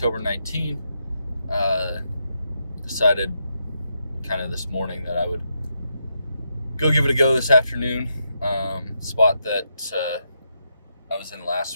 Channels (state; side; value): inverted; both; correlation -0.82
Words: 19th. Decided kind of this morning that I would go give it a go this afternoon. Spot that I was in